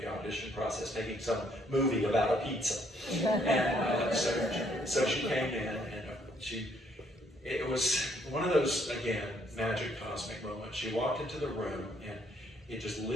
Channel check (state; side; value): normal; both; correlation 0.68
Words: the audition process making some movie about a pizza. And so she came in, and it was one of those, again, magic cosmic moments. She walked into the room and it just